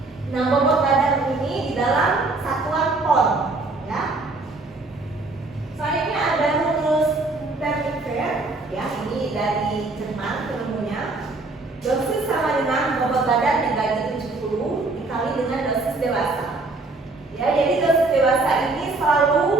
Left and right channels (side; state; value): left; quieter; 3.3 dB